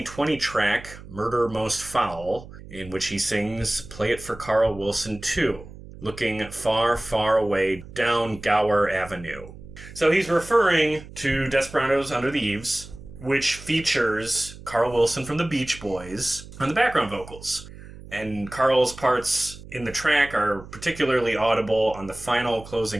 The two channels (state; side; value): noise; right; hum, 16 dB below the sound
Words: track, Murder Most Foul, in which he sings, Play It for Carl Wilson too, looking far, far away down Gower Avenue. So he's referring to Desperados Under the Eaves, which features Carl Wilson from the Beach Boys on the background vocals. And Carl's parts in the track are particularly audible on the final